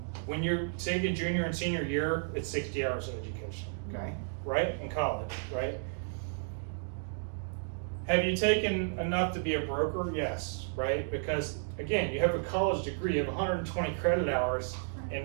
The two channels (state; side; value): silent; left; digital silence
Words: When you're taking junior and senior year, it's 60 hours of education, okay? Right? In college, right? Have you taken enough to be a broker? Yes, right? Because, again, you have a college degree, you have 120 credit hours